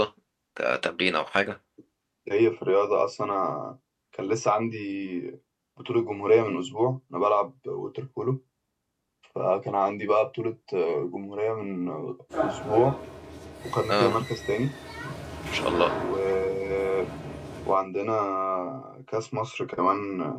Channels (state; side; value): identical; both; correlation 1.00